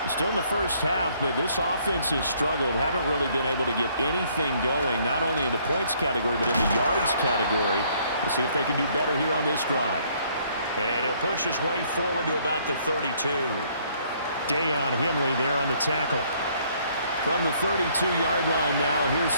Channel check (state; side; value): inverted; both; correlation -0.64